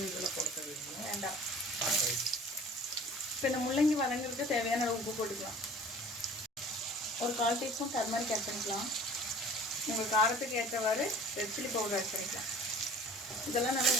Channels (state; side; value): normal; both; correlation 0.46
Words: வேண்டாம். இப்போ இந்த முள்ளங்கி வதங்கிறதுக்கு தேவையான அளவு உப்பு போட்டுக்கலாம். ஒரு 1/4 டீஸ்பூன் டர்மரிக் ஆட் பண்ணிக்கலாம். உங்கள் காரத்துக்கு ஏற்றவாறு ரெட் சில்லி பவுடர் ஆட் பண்ணிக்கலாம். இதெல்லாம் நல்லா